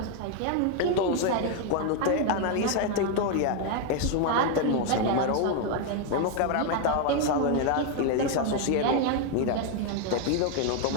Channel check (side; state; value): both; different; correlation 0.01